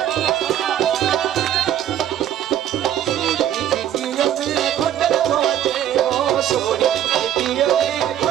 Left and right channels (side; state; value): left; quieter; 11.0 dB